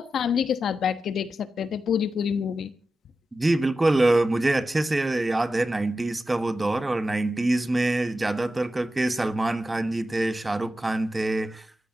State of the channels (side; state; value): both; normal; correlation 0.91